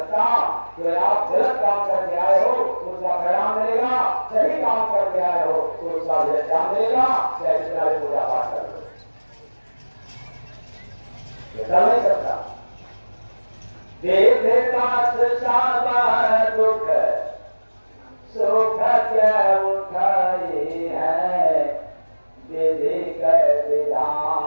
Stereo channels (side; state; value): both; inverted; correlation -1.00